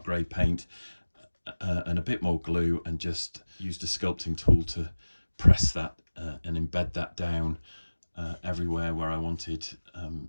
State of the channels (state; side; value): inverted; both; correlation -1.00